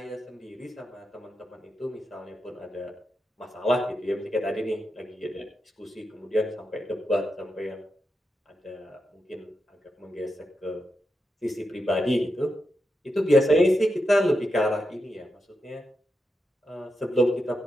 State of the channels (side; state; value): both; normal; correlation 0.86